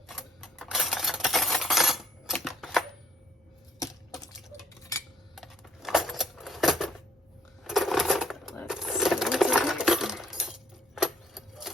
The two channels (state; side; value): normal; both; correlation 0.63